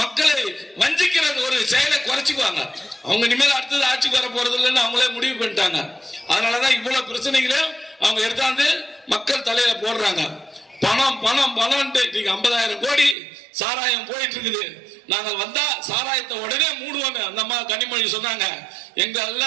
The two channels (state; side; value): drops out; left; at 13.2 s